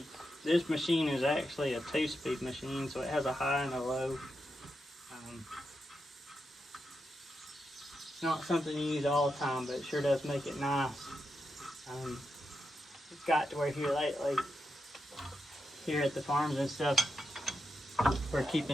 This machine is actually a 2-speed machine, so it has a high and a low. It's not something you use all the time, but it sure does make it nice. It's got to where here lately, here at the farms and stuff, we're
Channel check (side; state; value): both; normal; correlation 0.85